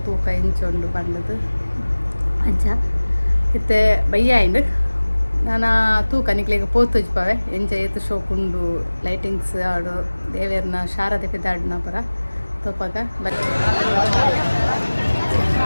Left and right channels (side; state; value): both; inverted; correlation -1.00